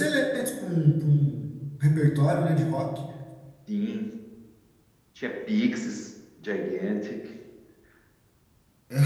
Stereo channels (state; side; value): identical; both; correlation 1.00